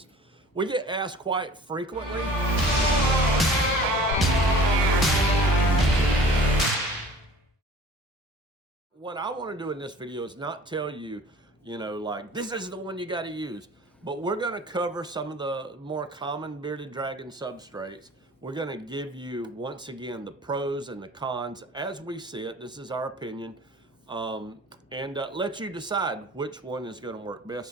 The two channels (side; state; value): both; normal; correlation 0.45